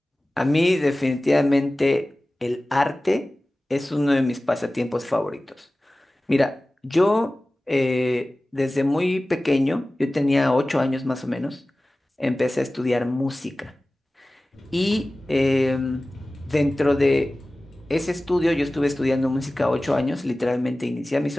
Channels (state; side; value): normal; both; correlation 0.97